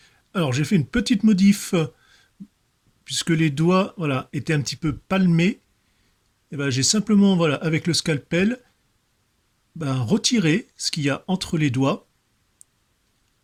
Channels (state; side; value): identical; both; correlation 1.00